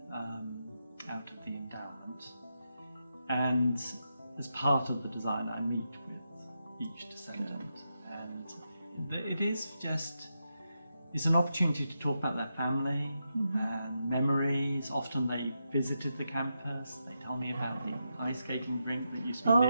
out of the endowment. And as part of the design, I meet with each descendant, and it is just, it's an opportunity to talk about their family and memories. Often they visited the campus. They tell me about the ice skating rink that used to be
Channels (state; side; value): inverted; both; correlation -0.86